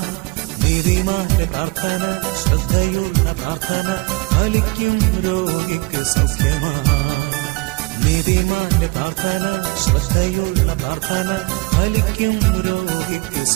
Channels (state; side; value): quieter; left; 25.5 dB